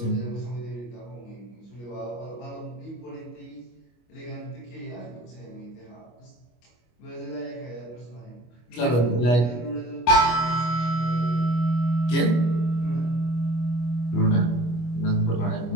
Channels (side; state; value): right; late; 25 ms